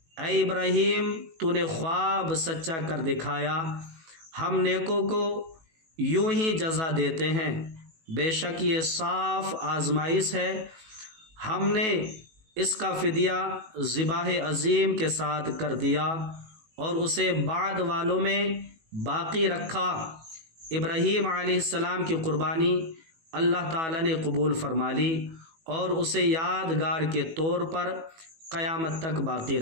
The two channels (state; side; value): late; left; 18 ms